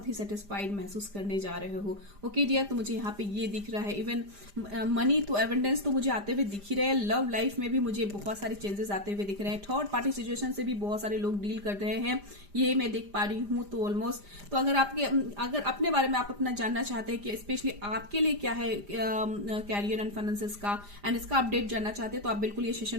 ही सेटिस्फाइड महसूस करने जा रहे हो, ओके डियर। तो मुझे यहाँ पे ये दिख रहा है, इवन मनी तो एवेंडेंस तो मुझे आते हुए दिख ही रहे हैं, लव लाइफ में भी मुझे बहुत सारे चेंजेस आते हुए दिख रहे हैं, थर्ड पार्टी सिचुएशन से भी बहुत सारे लोग डील कर रहे हैं, ये मैं देख पा रही हूँ। तो ऑलमोस्ट तो अगर अपने बारे में आप अपना जानना चाहते हैं कि स्पेशली आपके लिए क्या है कैरियर एंड फाइनेंसेस का एंड इसका अपडेट जानना चाहते हैं, तो आप बिल्कुल ये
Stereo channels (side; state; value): left; late; 5.0 ms